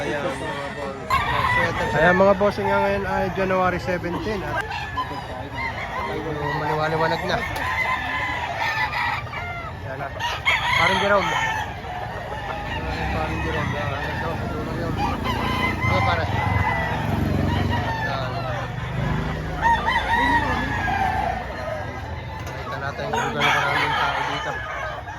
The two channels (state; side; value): identical; both; correlation 1.00